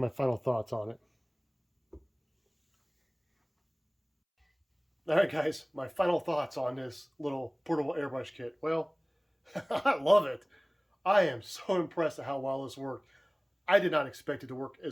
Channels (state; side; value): identical; both; correlation 1.00